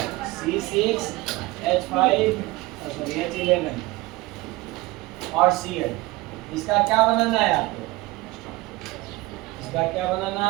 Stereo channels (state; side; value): quieter; left; 20.8 dB